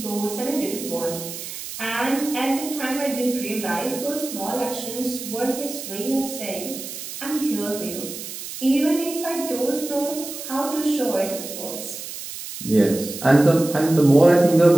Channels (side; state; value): right; noise; hiss, 10 dB below the sound